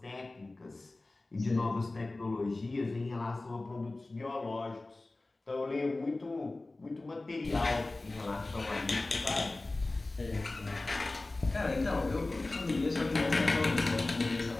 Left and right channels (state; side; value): quieter; right; 3.0 dB